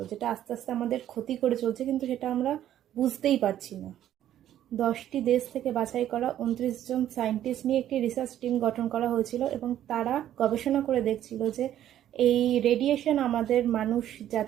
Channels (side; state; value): left; quieter; 11.6 dB